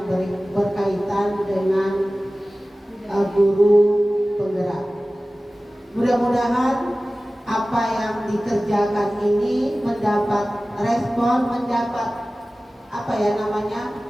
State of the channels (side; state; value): both; normal; correlation 0.97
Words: berkaitan dengan guru penggerak. Mudah-mudahan apa yang dikerjakan ini mendapat respon, mendapat